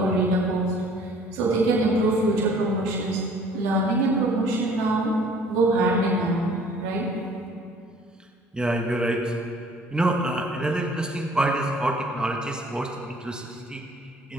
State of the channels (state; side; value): normal; both; correlation 0.54